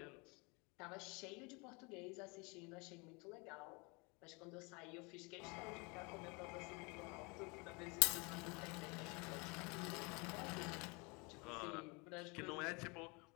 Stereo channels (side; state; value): right; quieter; 29.1 dB